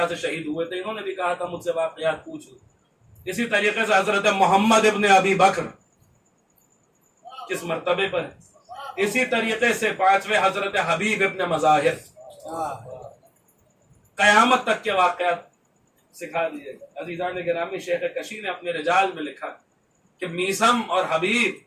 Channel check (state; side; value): identical; both; correlation 1.00